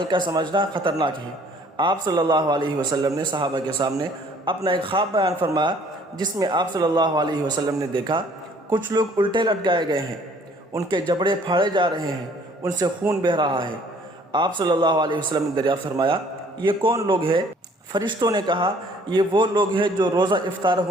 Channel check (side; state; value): both; normal; correlation 0.58